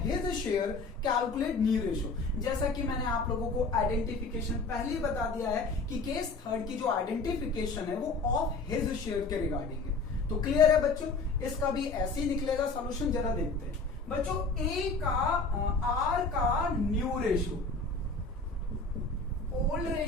his share. Calculate new ratio. जैसा कि मैंने आप लोगों को आइडेंटिफिकेशन पहले ही बता दिया है कि केस 3 की जो आइडेंटिफिकेशन है वो ऑफ हिज शेयर के रिगार्डिंग है। तो क्लियर है बच्चों, इसका भी ऐसे ही निकलेगा सॉल्यूशन, जरा देखते हैं बच्चों। R का new ratio, old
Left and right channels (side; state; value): right; quieter; 3.7 dB